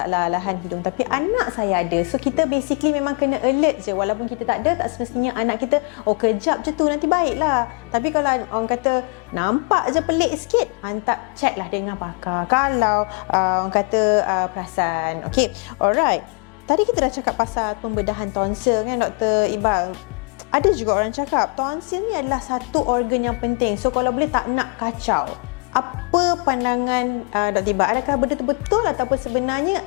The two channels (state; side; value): quieter; right; 35.0 dB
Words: lahan hidung, tapi anak saya ada. So kita basically memang kena alert je. Walaupun kita tak ada, tak semestinya anak kita kejap je tu nanti baiklah. Tapi kalau orang kata nampak je pelik sikit, hantar check lah dengan pakar. Kalau orang kata perasan. Okay, alright. Tadi kita dah cakap pasal pembedahan tonsil kan Dr. Iqbal. Ada juga orang cakap tonsil ni adalah satu organ yang penting. So kalau boleh tak nak kacau. Apa pandangan Dr. Iqbal? Adakah benda tu betul ataupun sebenarnya